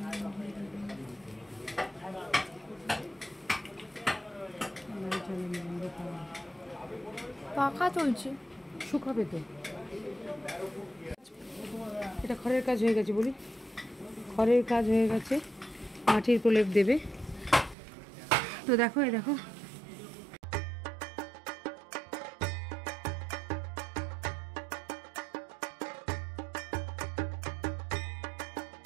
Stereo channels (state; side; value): drops out; left; at 17.8 s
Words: পাখা চলছে, শুকাবে তো। এটা খড়ের কাজ হয়ে গেছে বলি, খড়ের কাজ হয়ে গেছে। মাটির প্রলেপ দেবে। তো দেখো, এই দেখো